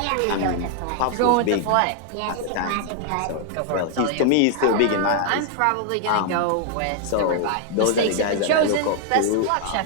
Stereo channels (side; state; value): both; different; correlation 0.00